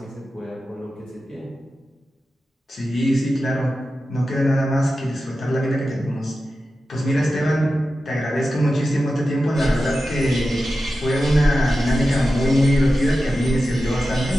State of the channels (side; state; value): both; normal; correlation 0.92